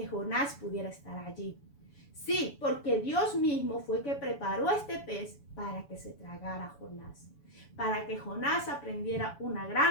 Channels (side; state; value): right; late; 7.0 ms